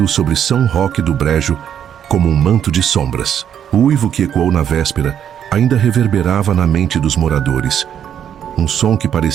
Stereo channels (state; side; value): quieter; left; 9.2 dB